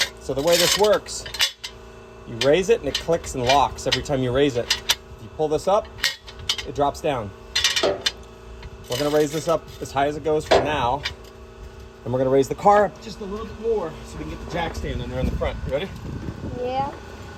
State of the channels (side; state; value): both; identical; correlation 1.00